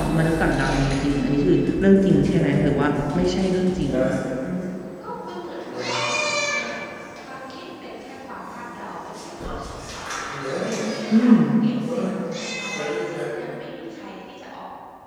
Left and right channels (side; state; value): both; identical; correlation 1.00